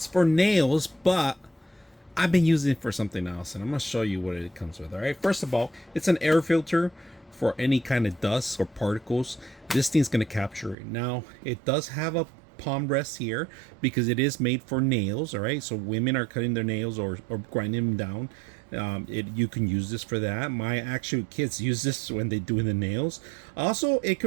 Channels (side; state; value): left; drops out; at 10.8 s